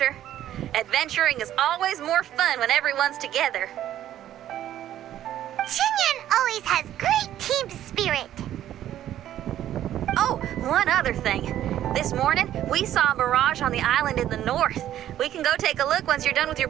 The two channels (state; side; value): quieter; left; 12.0 dB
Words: Adventuring is always more fun when everyone's together. Xinyan always has great team spirit. Oh, one other thing. This morning, we saw a mirage on the island in the north. We can go take a look once you're done with your